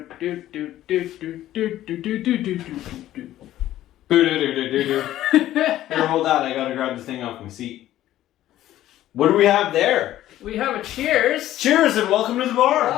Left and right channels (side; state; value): right; quieter; 13.6 dB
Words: hold on. I gotta grab the thing off my seat. What do we have there? We have a cheers. Cheers and welcome to the bar.